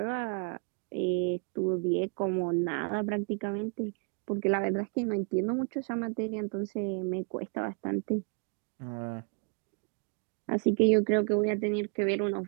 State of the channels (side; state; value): left; quieter; 37.9 dB